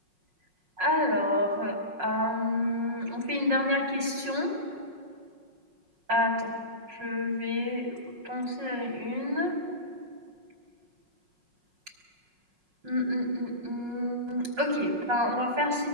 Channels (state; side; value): late; left; 5.5 ms